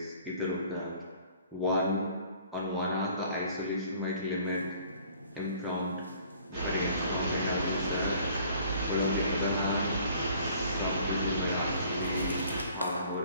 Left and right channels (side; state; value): both; inverted; correlation -0.55